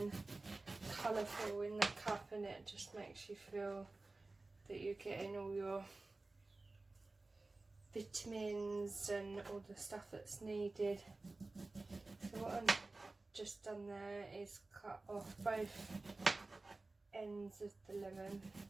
colourful in the cup, and it just makes you feel that you're getting all your vitamins and all the stuff that's needed. So what I've just done there is cut off both ends of the lemon.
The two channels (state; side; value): quieter; left; 3.3 dB